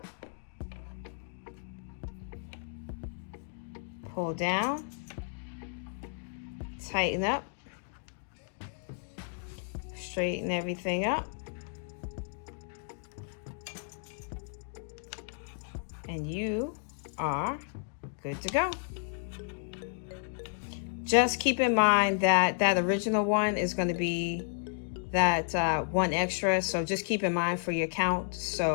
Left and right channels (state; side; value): silent; right; digital silence